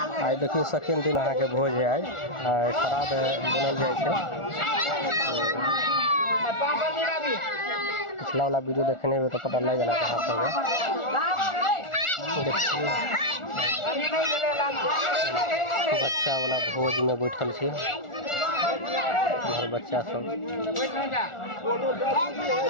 देखिए सेकेंड दिन अहाँ के भोज है। आज शराब बनल जाए। पिछला वाला वीडियो देखने में तो पता लग गया कहाँ सब है। बच्चा वाला भोज में बैठल छे बच्चा सब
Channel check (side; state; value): right; late; 1.4 ms